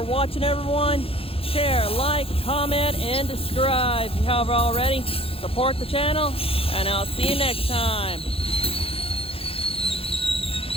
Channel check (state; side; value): late; right; 0.27 ms